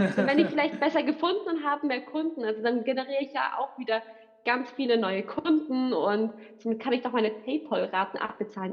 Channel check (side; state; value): both; identical; correlation 1.00